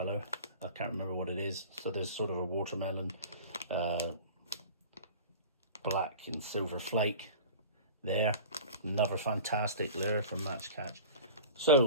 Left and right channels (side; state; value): both; inverted; correlation -0.37